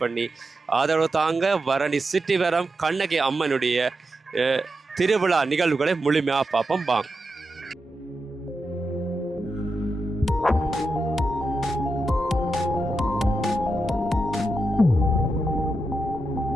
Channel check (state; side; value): normal; both; correlation 0.87